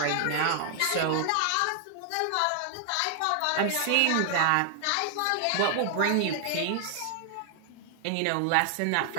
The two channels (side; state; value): both; different; correlation 0.00